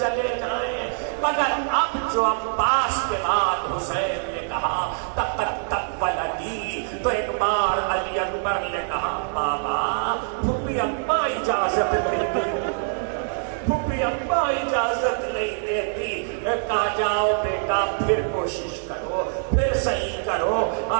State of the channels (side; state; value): left; silent; 62 dB below the other